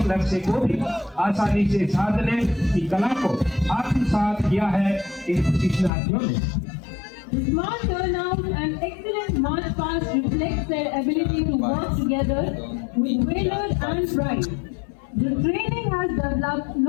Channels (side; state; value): right; drops out; at 5.9 s